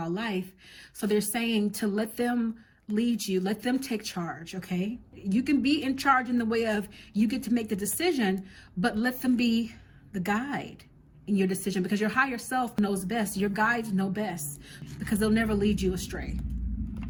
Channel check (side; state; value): both; identical; correlation 1.00